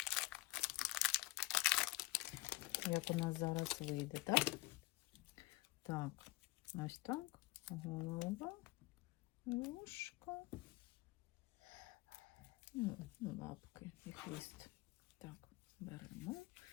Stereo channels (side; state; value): right; quieter; 19.9 dB